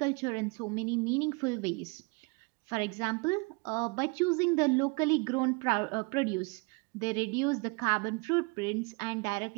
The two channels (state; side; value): quieter; left; 29.7 dB